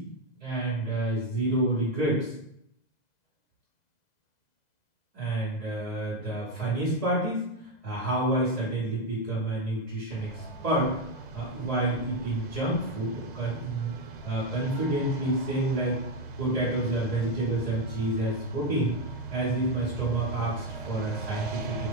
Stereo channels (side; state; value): right; late; 2.0 ms